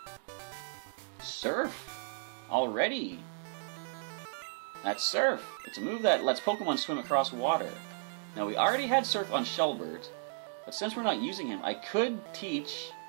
Surf? Already? That's Surf. It's a move that lets Pokemon swim across water. Now, we already had Surf on Shelbert, but since we're not using him, I could teach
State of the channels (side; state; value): left; silent; 55 dB below the other